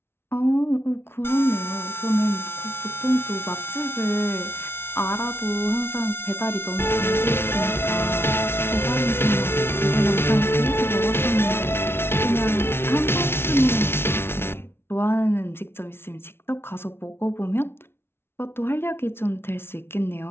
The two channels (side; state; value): right; late; 0.12 ms